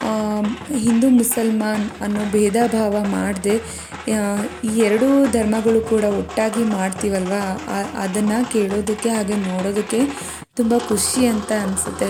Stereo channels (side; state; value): both; identical; correlation 1.00